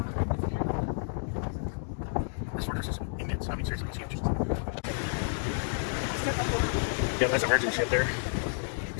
This fortress is immense. I mean, seriously, it's huge. Yeah, that's a merchant ship there.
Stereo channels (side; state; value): right; silent; digital silence